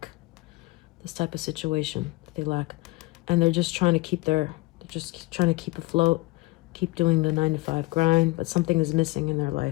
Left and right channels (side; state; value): right; quieter; 21.0 dB